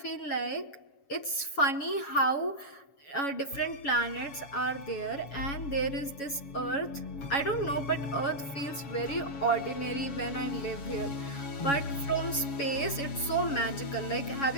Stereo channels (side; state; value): right; late; 7.2 ms